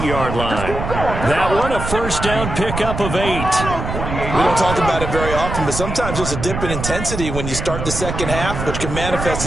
line. That one, a first down pickup of 8. We don't talk about it very often, but sometimes there's a dip in intensity when you start the second half, which can manifest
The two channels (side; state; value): right; noise; rumble, 5 dB below the sound